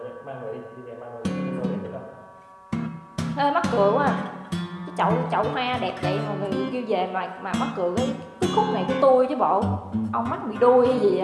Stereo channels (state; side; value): identical; both; correlation 1.00